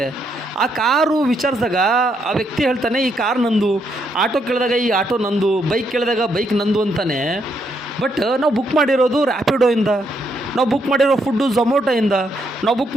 ಆ ಕಾರು ವಿಚಾರಿಸಿದಾಗ ಆ ವ್ಯಕ್ತಿ ಹೇಳ್ತಾನೆ, ಈ ಕಾರ್ ನಂದು. ಆಟೋ ಕೇಳಿದಾಗ ಈ ಆಟೋ ನಂದು, ಬೈಕ್ ಕೇಳಿದಾಗ ಬೈಕ್ ನಂದು ಅಂತಾನೆ. ಬಟ್ ನಾವು ಬುಕ್ ಮಾಡಿರೋದು ರ್ಯಾಪಿಡೋಯಿಂದ, ನಾವು ಬುಕ್ ಮಾಡಿರೋ ಫುಡ್ಡು ಝೊಮ್ಯಾಟೊಯಿಂದ, ನಾವು ಬುಕ್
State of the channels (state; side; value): normal; both; correlation 0.76